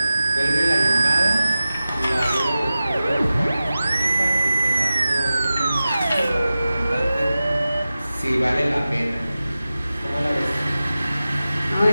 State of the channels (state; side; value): inverted; both; correlation -0.95